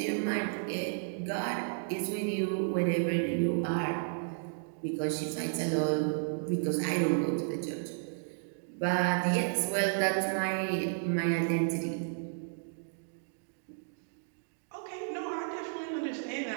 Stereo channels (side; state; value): left; silent; digital silence